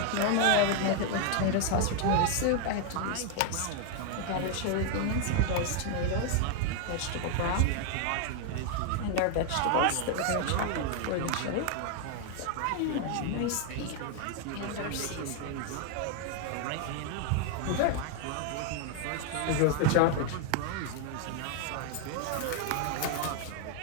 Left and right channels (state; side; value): different; both; correlation 0.01